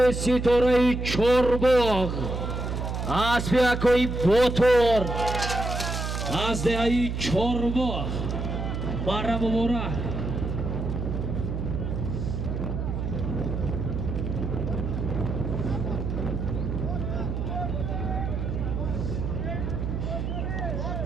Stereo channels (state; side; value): noise; right; hum, 3 dB below the sound